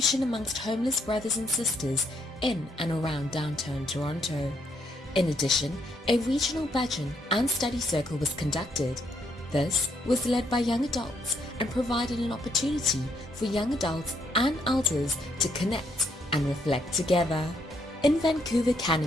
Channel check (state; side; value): normal; both; correlation 0.73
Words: amongst homeless brothers and sisters in and around downtown Toronto. In addition, a regional bhajan and study circle was conducted. This was led by young adults and provided an opportunity for young adults and elders to connect and reflect together. In Vancouver,